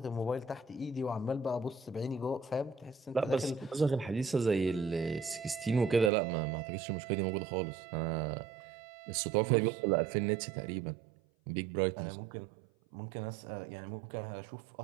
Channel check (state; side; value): drops out; left; at 6.1 s